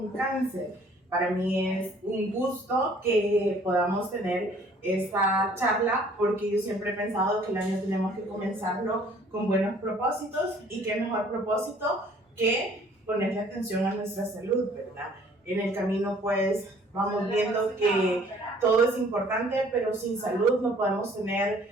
cáncer. Para mí es un gusto que podamos tener esta charla porque yo siempre he pensado que el año tenemos que comenzarlo con buenos propósitos y qué mejor propósito que ponerle atención a nuestra salud, ¿verdad? En el camino pues vamos viendo que todo es importante, pero sin salud no podemos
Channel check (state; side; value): normal; both; correlation 0.57